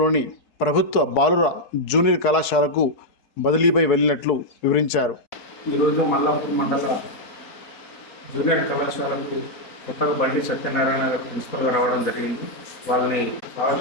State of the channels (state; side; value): late; right; 4.7 ms